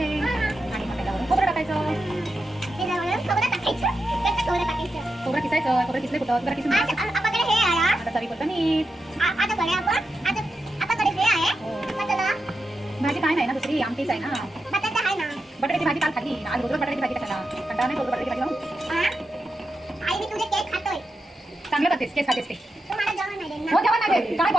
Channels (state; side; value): normal; both; correlation 0.88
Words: आणि मग त्याच्यावरून खोबरं टाकायचं. खोबरं किसायचं. खोबरं किसले कुठं? खोबरं किसून आता चवीपुरतं मीठ. भाजी काय नाही ना दुसरी आमटीच आहे ना. बटाट्याची भाजी काल खाल्ली. आज रोज बटाट्याची भाजी कशाला? कंटाळा नाही रोज बटाट्याची भाजी लावून. चांगलं करतेस. केस खातेस ते. हो जेवण नाही देत. काय